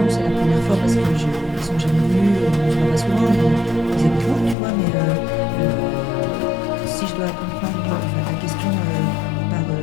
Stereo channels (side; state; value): right; drops out; at 4.5 s